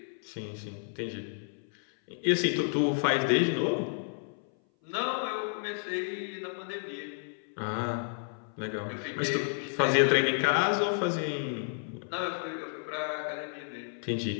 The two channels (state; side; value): silent; right; 57 dB below the other